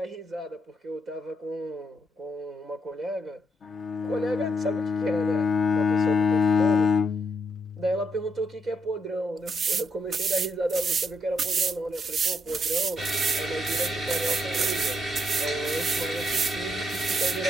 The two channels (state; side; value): normal; both; correlation 0.76